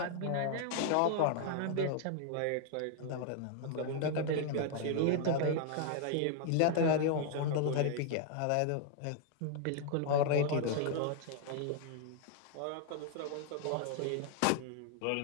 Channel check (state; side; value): different; both; correlation 0.00